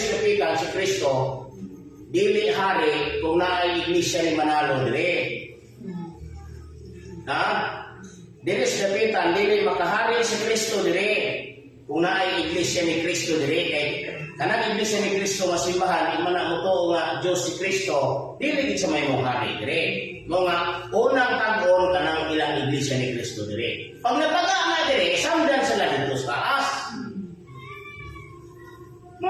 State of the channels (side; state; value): both; identical; correlation 1.00